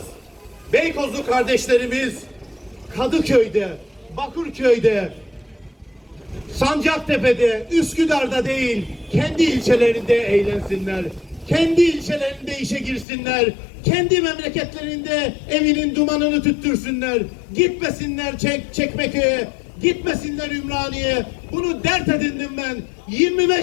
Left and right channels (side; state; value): right; drops out; at 13.1 s